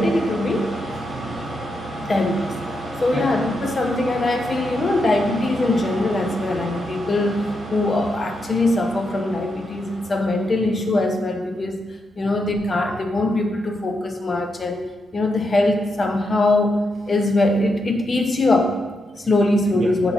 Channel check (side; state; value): both; normal; correlation 0.83